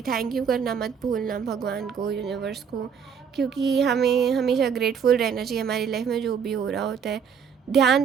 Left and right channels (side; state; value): left; quieter; 7.0 dB